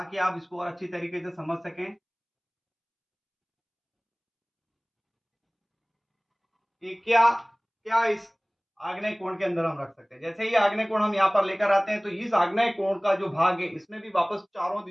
आप इसको और अच्छी तरीके से समझ सकें कि क्या क्या इस आग्नेय कोण के अंदर हम रख सकते हैं। जैसे ही आग्नेय कोण हम यहाँ पर लेकर आते हैं तो इस आग्नेय कोण का जो भाग है इसमें भी वापस चारों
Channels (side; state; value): both; identical; correlation 1.00